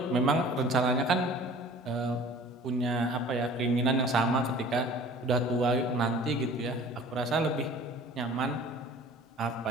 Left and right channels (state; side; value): normal; both; correlation 0.46